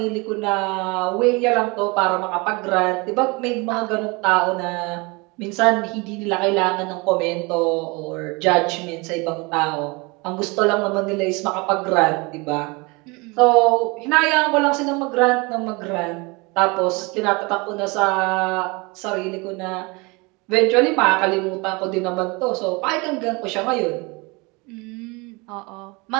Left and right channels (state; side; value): quieter; left; 27.1 dB